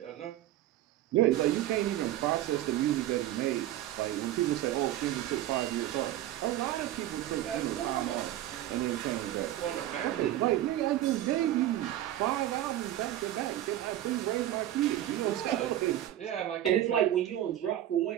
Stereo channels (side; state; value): left; quieter; 13.4 dB